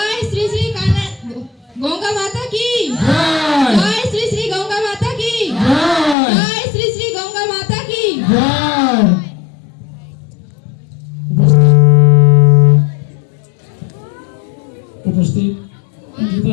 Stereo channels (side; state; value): right; drops out; at 6.2 s